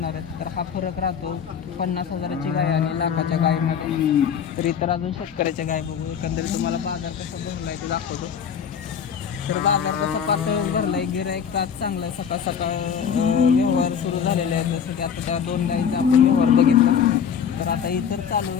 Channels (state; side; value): quieter; right; 7.6 dB